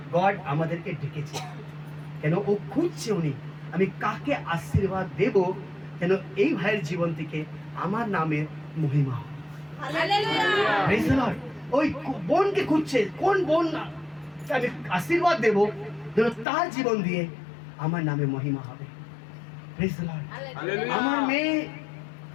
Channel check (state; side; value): drops out; right; at 16.4 s